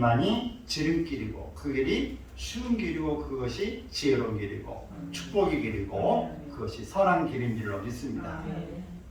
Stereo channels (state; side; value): identical; both; correlation 1.00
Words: 지름길이고 그 길이 쉬운 길이고 그것이 지혜로운 길이고 축복의 길이고 그것이 선한 길인 줄로 믿습니다.